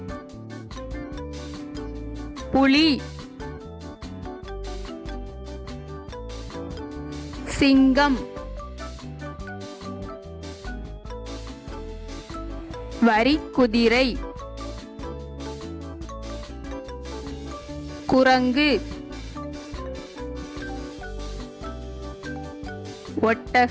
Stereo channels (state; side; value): identical; both; correlation 1.00